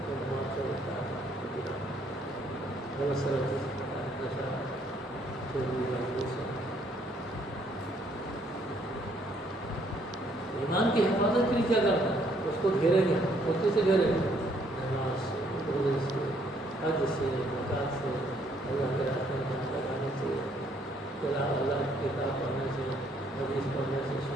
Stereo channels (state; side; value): normal; both; correlation 0.67